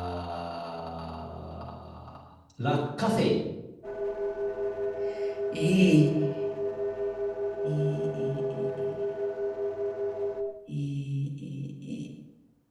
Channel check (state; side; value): identical; both; correlation 1.00